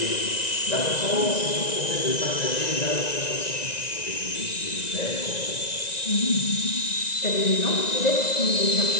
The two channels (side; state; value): right; late; 1.9 ms